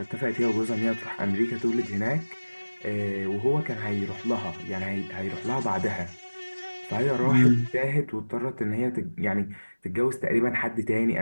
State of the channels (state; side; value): inverted; both; correlation -1.00